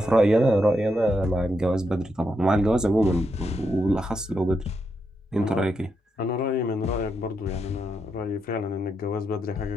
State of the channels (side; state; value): both; normal; correlation 0.82